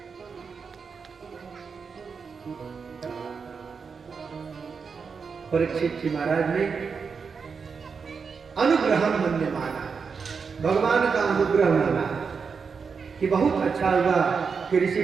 परीक्षित जी महाराज ने अनुग्रह मन्य माना, भगवान का अनुग्रह माना कि बहुत अच्छा हुआ कि ऋषि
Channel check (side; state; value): left; quieter; 5.6 dB